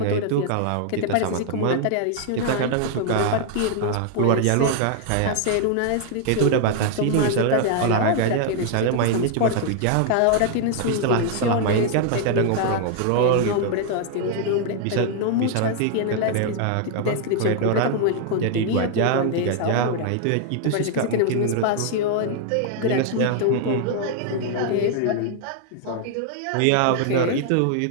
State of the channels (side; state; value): both; different; correlation 0.00